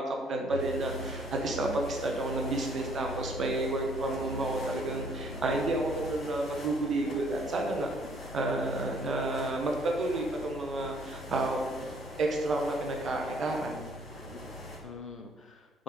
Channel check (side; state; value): both; normal; correlation 0.62